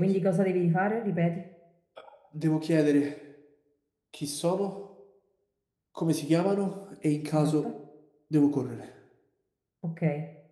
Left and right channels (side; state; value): both; identical; correlation 1.00